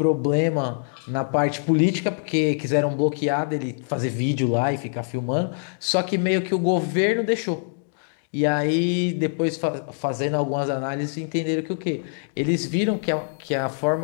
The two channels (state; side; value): silent; right; digital silence